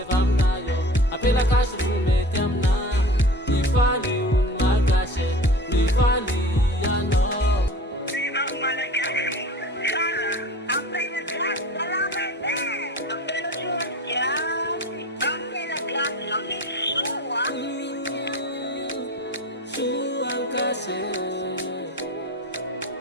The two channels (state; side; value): normal; both; correlation 0.37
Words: vamnayo apela kash rume tamna bifali un makashe bifali ano